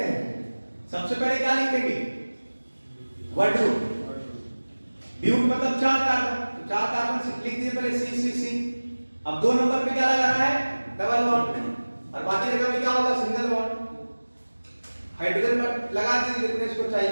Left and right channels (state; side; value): inverted; both; correlation -1.00